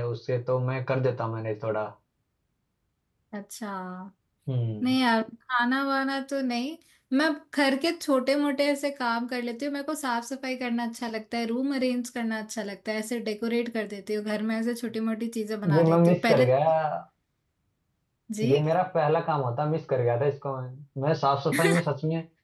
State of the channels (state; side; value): identical; both; correlation 1.00